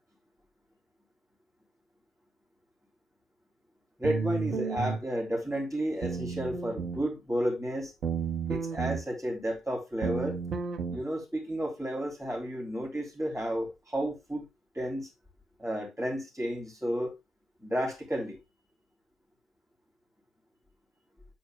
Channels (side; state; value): both; normal; correlation 0.86